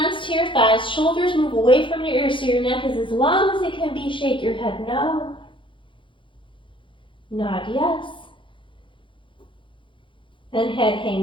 to your thighs, shoulders move away from your ears so your neck is as long as it can be. Shake your head no. Nod yes. And head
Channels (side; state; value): right; late; 0.24 ms